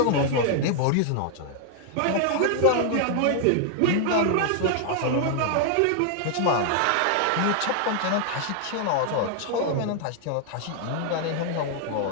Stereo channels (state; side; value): different; both; correlation 0.00